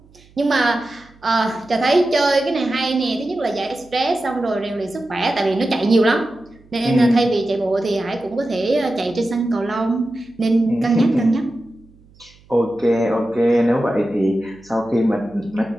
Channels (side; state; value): right; noise; hum, 28 dB below the sound